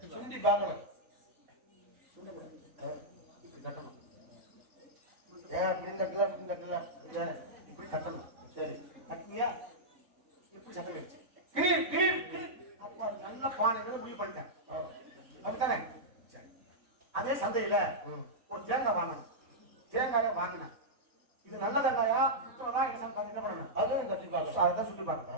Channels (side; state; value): left; late; 4.1 ms